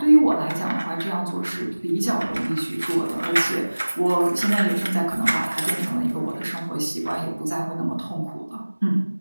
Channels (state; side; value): inverted; both; correlation -1.00